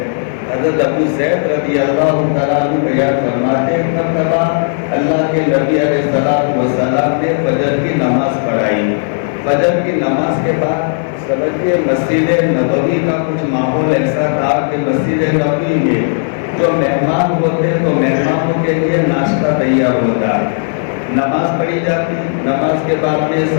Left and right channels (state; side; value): silent; right; digital silence